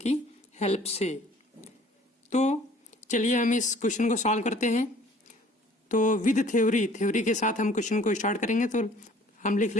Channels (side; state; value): both; normal; correlation 0.53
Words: हेल्प से। तो चलिए हम इस क्वेश्चन को सॉल्व करते हैं। तो विद थ्योरी के साथ हम क्वेश्चन को स्टार्ट करेंगे। तो हम लिख